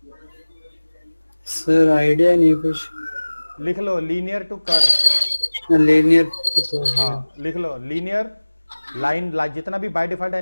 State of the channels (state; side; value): inverted; both; correlation -1.00